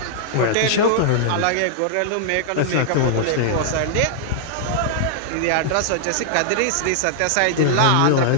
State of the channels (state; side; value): different; both; correlation -0.01